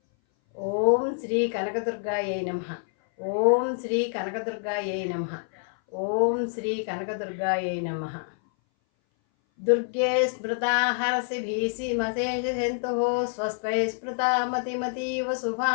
ఓం శ్రీ కనకదుర్గాయై నమః. ఓం శ్రీ కనకదుర్గాయై నమః. ఓం శ్రీ కనకదుర్గాయై నమః. దుర్గే స్మృతా హరసి భీషిమశేషజంతుః స్వస్త్వై స్మృతా మతిమతీవ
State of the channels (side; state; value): right; silent; 58 dB below the other